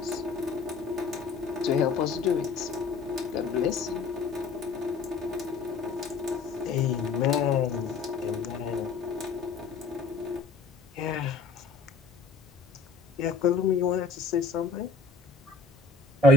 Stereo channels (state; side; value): quieter; right; 4.4 dB